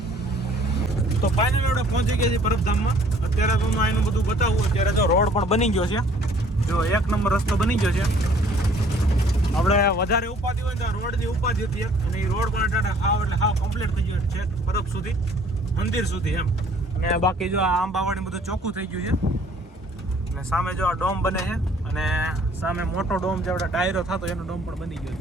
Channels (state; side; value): normal; both; correlation 0.57